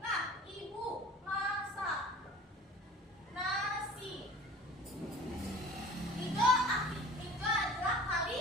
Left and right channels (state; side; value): normal; both; correlation 0.44